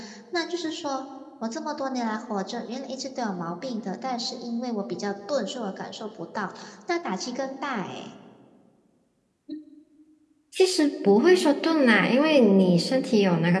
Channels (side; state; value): both; identical; correlation 1.00